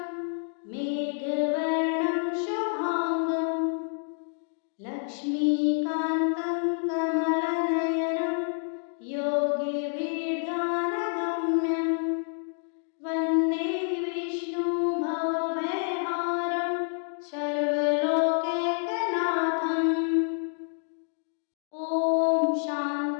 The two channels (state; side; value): silent; right; 59 dB below the other